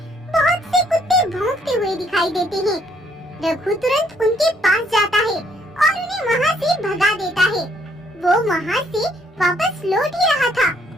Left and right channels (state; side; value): normal; both; correlation 0.67